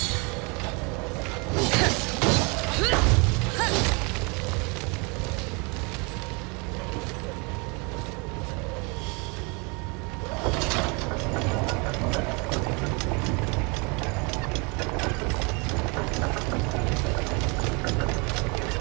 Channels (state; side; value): quieter; left; 30.7 dB